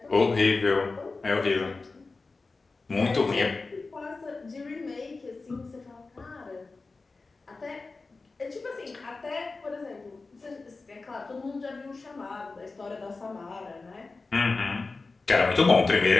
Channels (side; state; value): right; quieter; 3.8 dB